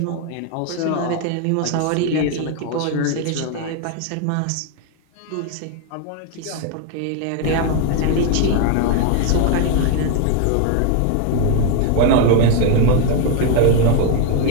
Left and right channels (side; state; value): both; different; correlation 0.01